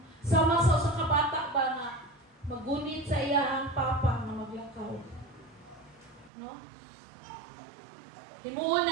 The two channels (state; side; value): drops out; left; at 6.3 s